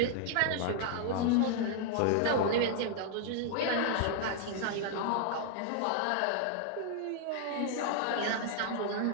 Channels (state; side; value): different; both; correlation 0.00